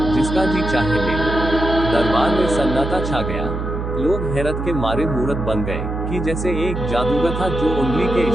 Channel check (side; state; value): right; noise; hum, 4 dB below the sound